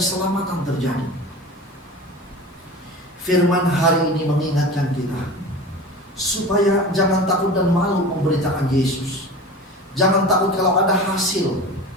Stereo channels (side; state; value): both; normal; correlation 0.34